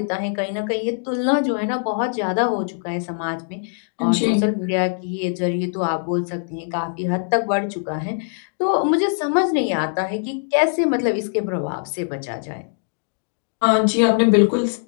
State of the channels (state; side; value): silent; right; digital silence